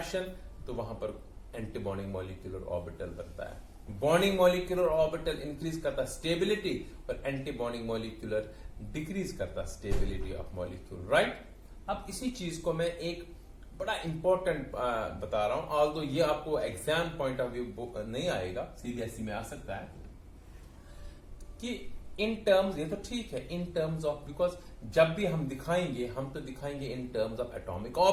तो वहां पर एंटी बॉन्डिंग मॉलिक्यूलर ऑर्बिटल बनता है. बॉन्डिंग मॉलिक्यूलर ऑर्बिटल इंक्रीज करता स्टेबिलिटी और एंटी बॉन्डिंग मॉलिक्यूलर डिक्रीज करता स्टेबिलिटी ऑफ मॉलिक्यूल. राइट. अब इसी चीज को मैं एक बड़ा इंपॉर्टेंट बता रहा हूं, ऑल्दो ये आपको एग्जाम पॉइंट ऑफ व्यू नहीं आएगा, सीबीएसई में आ सकता है कि इन टर्म्स, ये तो ठीक है इन टर्म्स ऑफ, बिकॉज जब भी हम दिखाएंगे हम तो दिखाएंगे in terms of atomic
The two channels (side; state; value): both; identical; correlation 1.00